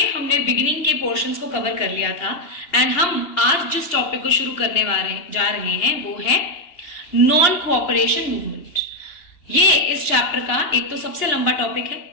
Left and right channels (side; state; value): right; late; 2.8 ms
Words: हमने बिगिनिंग के पोर्शंस को कवर कर लिया था एंड हम आज जिस टॉपिक को शुरू करने जा रहे हैं वो है नॉन कोऑपरेशन मूवमेंट। ये इस चैप्टर का एक तो सबसे लंबा टॉपिक है